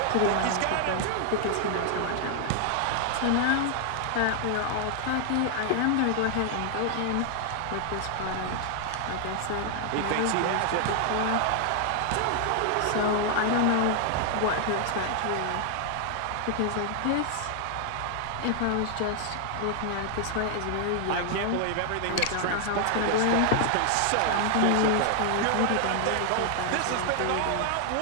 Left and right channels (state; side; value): different; both; correlation 0.00